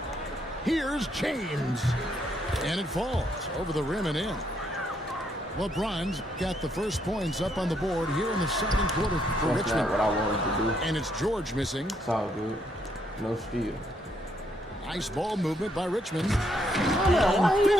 Here's James. And it falls over the rim and in. LeBron's got the first points up on the board here in the second quarter for That's Richmond. not what I wanted to do. And it's George missing. It's all good. No steal. Nice ball movement by Richmond. Why are you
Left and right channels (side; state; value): both; normal; correlation 0.73